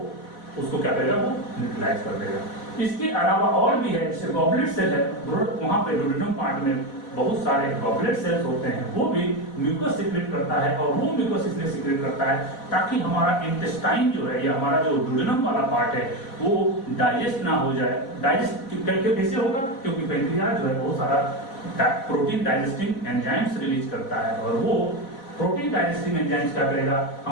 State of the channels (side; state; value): right; late; 4.1 ms